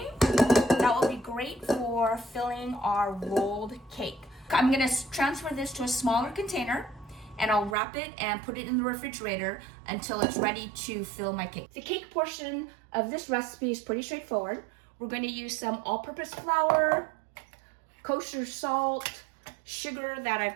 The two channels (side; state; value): left; drops out; at 7.8 s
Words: that will be great for filling our rolled cake. I'm gonna transfer this to a smaller container and I'll wrap it and put it in the refrigerator until it's ready to fill my cake. The cake portion of this recipe is pretty straightforward. We're going to use some all-purpose flour, kosher salt, sugar that